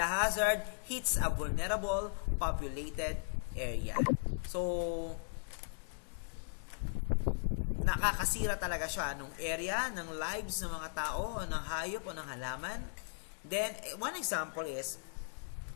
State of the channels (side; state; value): right; silent; 53 dB below the other